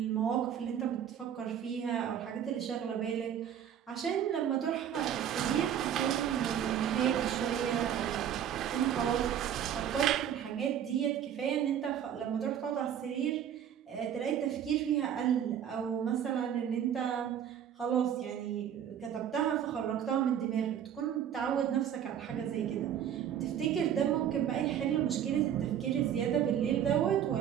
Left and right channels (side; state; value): left; quieter; 9.5 dB